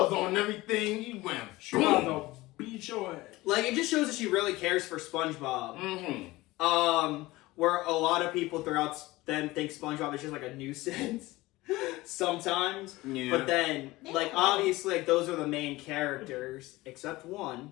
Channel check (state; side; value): quieter; right; 19.6 dB